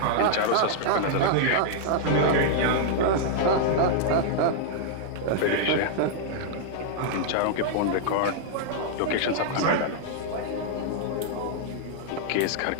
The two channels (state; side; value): different; both; correlation -0.01